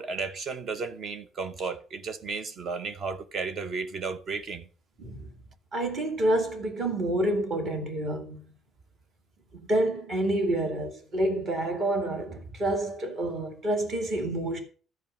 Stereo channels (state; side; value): normal; both; correlation 0.62